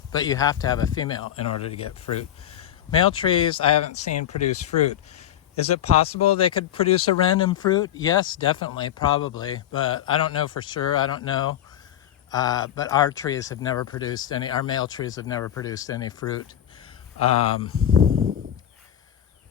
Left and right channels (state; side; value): quieter; right; 10.9 dB